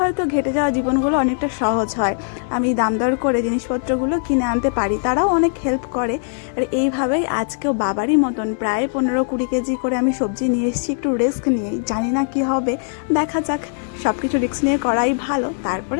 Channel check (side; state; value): right; silent; digital silence